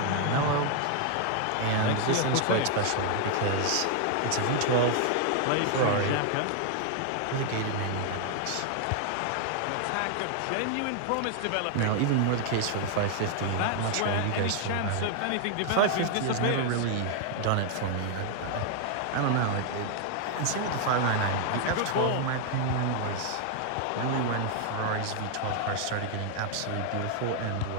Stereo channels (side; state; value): both; different; correlation 0.00